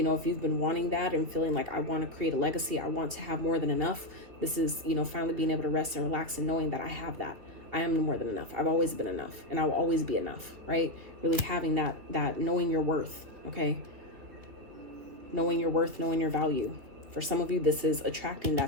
know, if you've been wanting that and feeling like I want to create a legacy, I want to have more than enough. This is, you know, finally being able to rest and relax and knowing that I have that. I am more than enough. I've always been enough and I'll always be enough, right? Really having that knowing your worth, okay? Knowing your worth, knowing your value. For some of you, this is attracting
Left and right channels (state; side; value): late; left; 3.2 ms